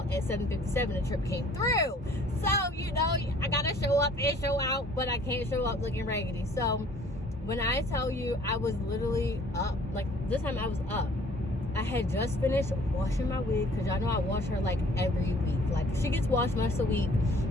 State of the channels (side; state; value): both; normal; correlation 0.55